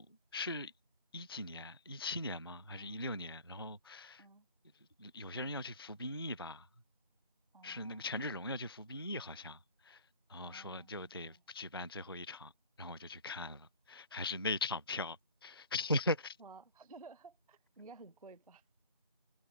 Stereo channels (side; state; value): both; inverted; correlation -0.43